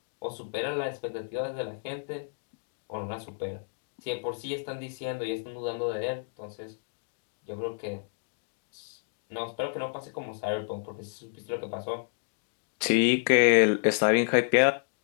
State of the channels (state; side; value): silent; right; digital silence